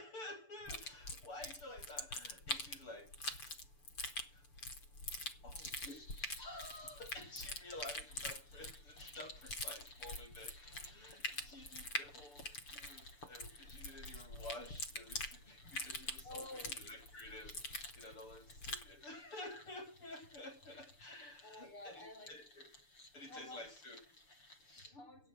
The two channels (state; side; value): late; right; 6.9 ms